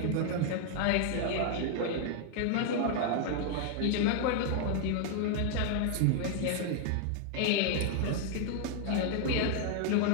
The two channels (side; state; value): both; different; correlation 0.00